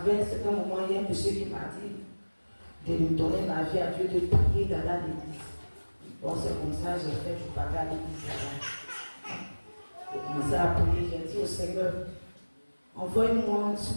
un certain moment, il y a un monsieur qui m'a dit de lui donner ma vie à Dieu, de prier dans l'église. Bon, c'est comme ça, j'ai fait, je parlais à l'église là-bas. J'ai commencé à prier, j'ai dit au Seigneur, envoie-moi sur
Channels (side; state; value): both; inverted; correlation -1.00